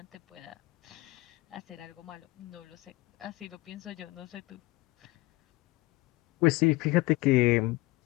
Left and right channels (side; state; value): right; quieter; 20.5 dB